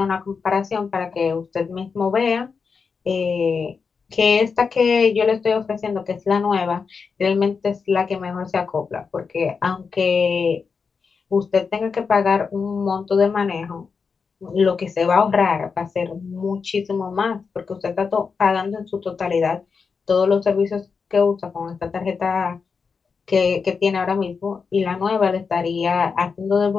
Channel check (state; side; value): quieter; right; 5.4 dB